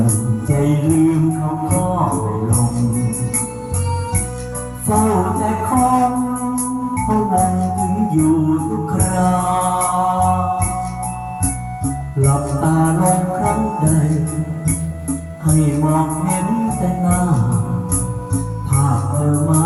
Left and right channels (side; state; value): both; identical; correlation 1.00